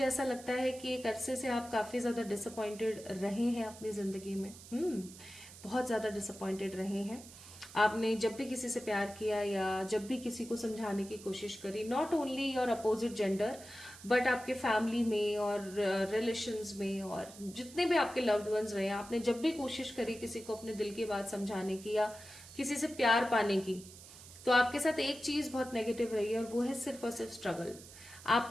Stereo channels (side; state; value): right; noise; hiss, 17 dB below the sound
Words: ऐसा लगता है कि एक अरसे से आप काफी ज्यादा डिसअपॉइंटेड रहे हैं अपनी जिंदगी में। बहुत ज्यादा डिसअपॉइंटेड रहे हैं। आपने जब भी किसी से प्यार किया या जब भी किसी को समझाने की कोशिश करी, not only your opposite gender but आपके फैमिली में और रिलेशंस में और जितने भी आपके लव्ड वंस रहे, आपने जब भी कोशिश करी किसी को अपने दिल की बात समझाने की या किसी से प्यार पाने की, तो आपके साथ एक चीज बहुत नेगेटिव रही है और वो है सिर्फ और सिर्फ स्ट्रगल।